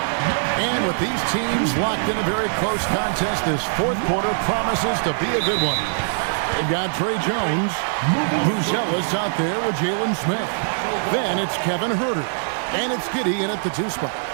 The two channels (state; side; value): silent; left; 64 dB below the other